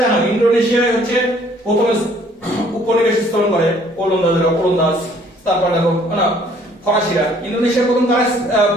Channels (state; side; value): normal; both; correlation 0.60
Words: জানো? ইন্দোনেশিয়া হচ্ছে প্রথমে উপনিবেশ স্থাপন করে ওলন্দাজ। তারপর দেখো না ফরাসিরা। ইন্দোনেশিয়ার প্রথম কারা?